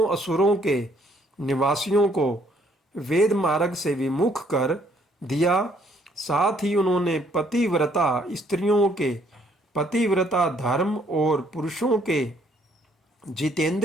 असुरों के निवासियों को वेद मार्ग से विमुख कर दिया। साथ ही उन्होंने पतिव्रता स्त्रियों के पतिव्रता धर्म और पुरुषों के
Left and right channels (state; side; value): normal; both; correlation 0.66